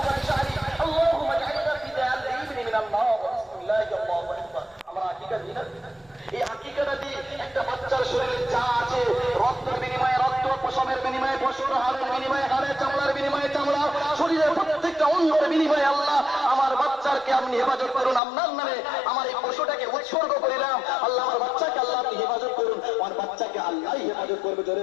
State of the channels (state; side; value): drops out; right; at 18.2 s